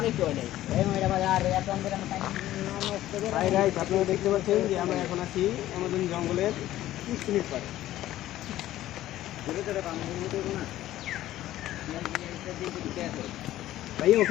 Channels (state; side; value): quieter; right; 14.2 dB